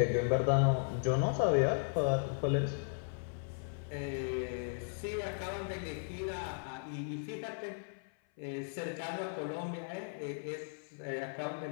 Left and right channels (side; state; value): right; silent; 54 dB below the other